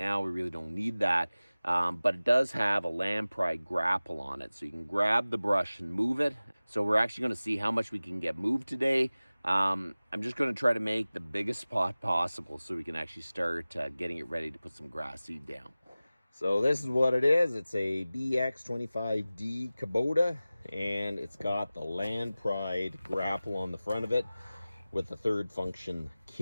We really don't need that. But it does have a land pry grapple on it, so you can grab the brush and move it. So we're actually going to see how much we can get moved today. I'm just going to try to make the biggest spot possible so we can actually start getting it ready to put some grass seed down. So this is what it is. It's a BX25D Kabota, and it's got the land pried grapple on the front of it with the third function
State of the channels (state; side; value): inverted; both; correlation -0.97